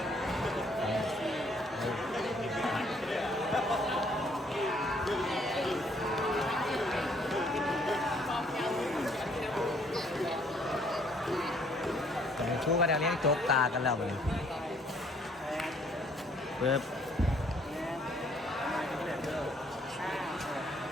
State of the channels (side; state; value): both; normal; correlation 0.64